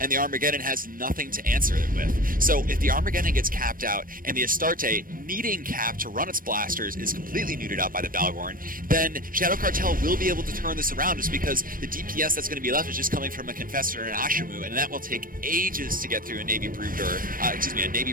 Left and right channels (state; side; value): late; left; 0.41 ms